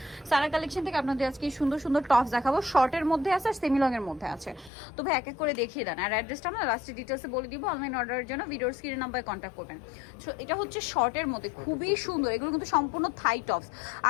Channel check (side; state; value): right; drops out; at 4.7 s